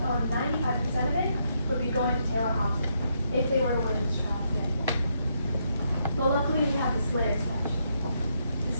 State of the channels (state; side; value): inverted; both; correlation -0.77